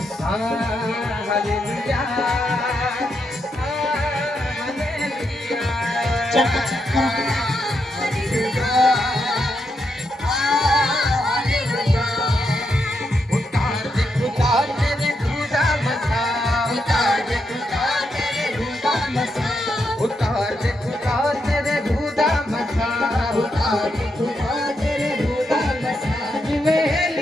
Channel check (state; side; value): normal; both; correlation 0.82